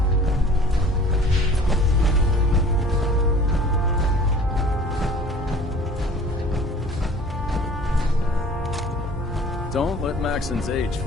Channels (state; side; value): normal; both; correlation 0.48